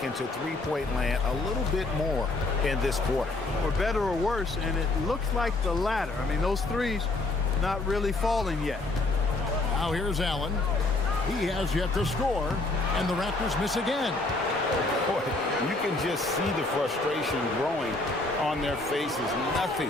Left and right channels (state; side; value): quieter; right; 3.1 dB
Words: into three-point land a little bit more in this quarter. For better or worse, and it looks like the latter. I mean, those threes not really falling yet. Now here's Allen. He has yet to score, and the Raptors miss again. Boy, you can just see the frustration growing on their faces.